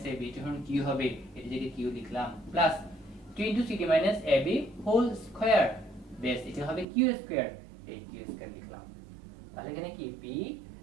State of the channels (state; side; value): drops out; left; at 6.9 s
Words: এটা সমান q হবে, এটা জায়গায় q লিখলাম, plus 3 into cd minus ab whole square. বেশ, এটা হবে q স্কয়ার, এই q স্কয়ার লিখলাম। তাহলে এখানে কি p,